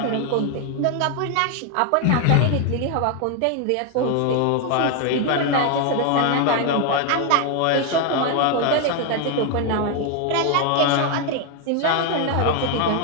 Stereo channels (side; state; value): both; different; correlation 0.01